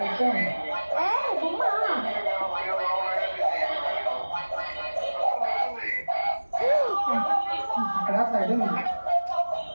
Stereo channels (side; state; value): both; inverted; correlation -1.00